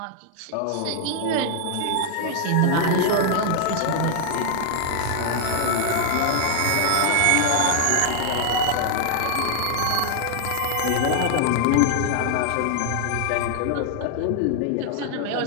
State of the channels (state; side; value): different; both; correlation 0.00